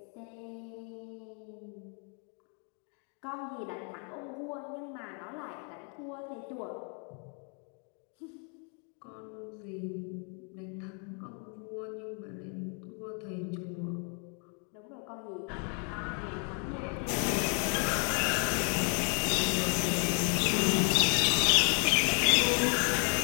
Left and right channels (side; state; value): right; quieter; 40.0 dB